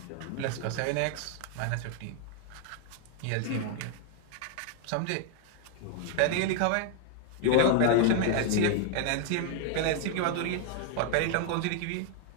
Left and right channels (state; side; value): different; both; correlation 0.00